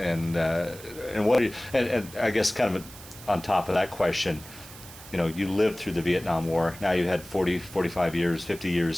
what? And I guess kind of on top of that question, you lived through the Vietnam War. Now you had 40, 45 years, 50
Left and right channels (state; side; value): noise; right; hiss, 17 dB below the sound